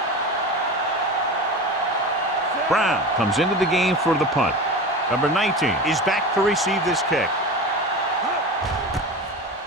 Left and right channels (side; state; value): both; normal; correlation 0.29